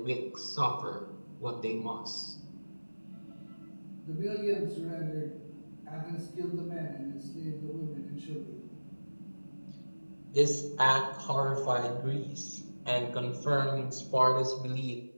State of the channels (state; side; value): inverted; both; correlation -1.00